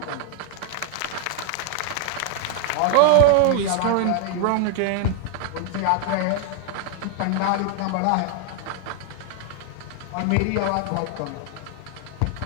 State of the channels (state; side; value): different; both; correlation 0.00